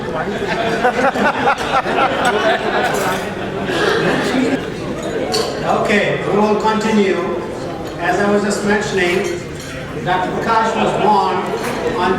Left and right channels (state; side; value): identical; both; correlation 1.00